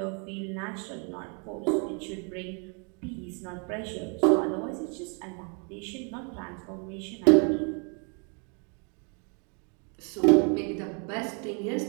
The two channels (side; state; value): left; quieter; 37.3 dB